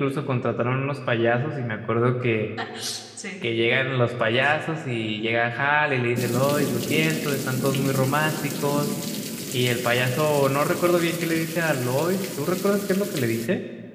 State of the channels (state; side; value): identical; both; correlation 1.00